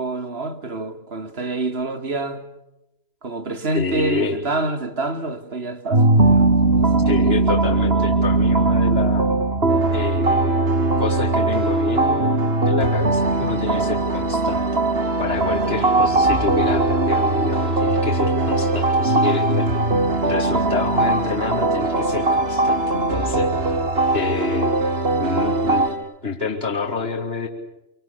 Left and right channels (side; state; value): left; late; 2.9 ms